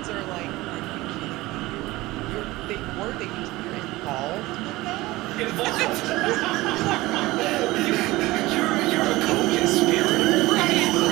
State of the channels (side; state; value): left; quieter; 19.4 dB